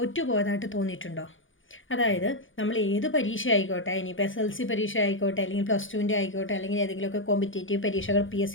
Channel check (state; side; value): late; right; 0.57 ms